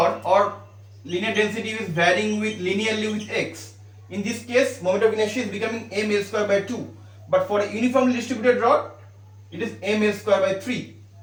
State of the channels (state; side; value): identical; both; correlation 1.00